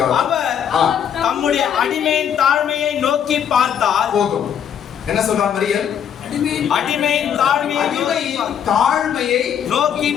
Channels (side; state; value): right; quieter; 8.7 dB